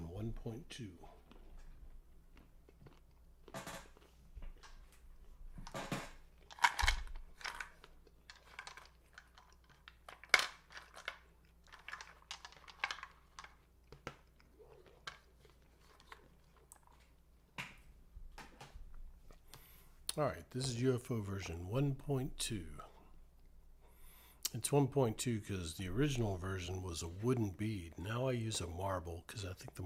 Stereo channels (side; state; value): both; identical; correlation 1.00